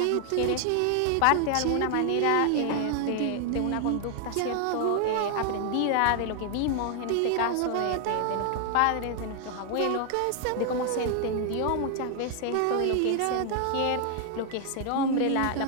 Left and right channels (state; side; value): different; both; correlation 0.00